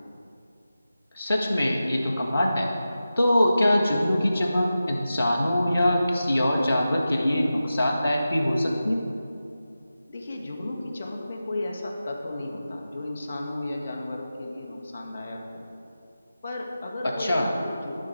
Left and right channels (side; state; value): both; inverted; correlation -0.93